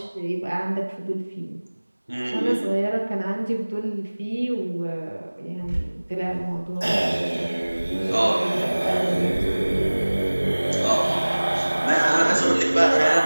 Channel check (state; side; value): inverted; both; correlation -1.00